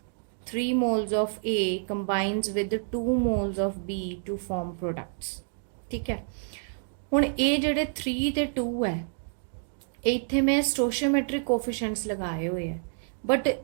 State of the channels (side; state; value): left; silent; digital silence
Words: 3 moles of A combines with 2 moles of B to form products, ਠੀਕ ਹੈ। ਹੁਣ ਇਹ ਜਿਹੜੇ 3 ਤੇ 2 ਹੈ ਇੱਥੇ ਮੈਂ ਸਟੋਸ਼ੀਓਮੈਟ੍ਰਿਕ ਕੋਫੀਸ਼ੀਐਂਟਸ ਲਗਾਏ ਹੋਏ ਹੈ, ਬਟ